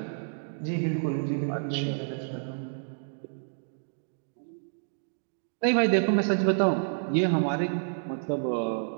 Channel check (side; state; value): left; silent; digital silence